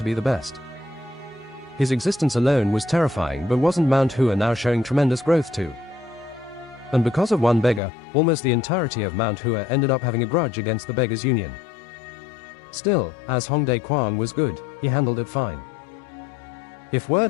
be the best. His existence alone was terrifying, but wasn't Mount Hua now showing tremendous growth too? And because of one beggar, almost the entirety of Mount Hua ended up having a grudge against the Beggars' Union. Still, as Hong Dae-kwang was good, he handled it fine. If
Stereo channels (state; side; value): drops out; right; at 7.8 s